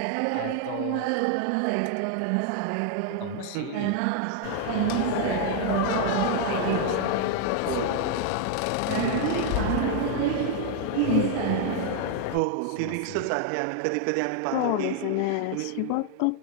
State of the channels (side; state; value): both; different; correlation 0.00